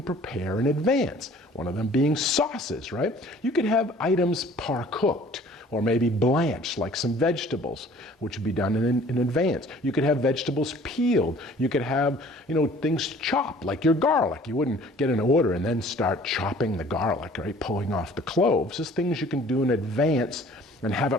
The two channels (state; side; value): normal; both; correlation 0.52